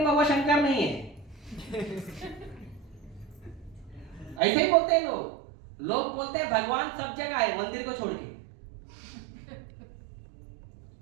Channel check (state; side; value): drops out; left; at 4.4 s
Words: वो शंकर नहीं है। ऐसे ही बोलते हैं लोग। लोग बोलते हैं भगवान सब जगह है मंदिर को छोड़ के।